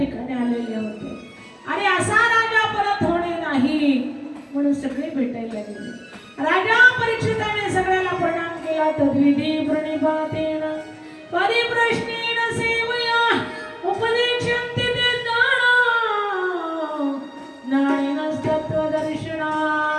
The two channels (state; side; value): identical; both; correlation 1.00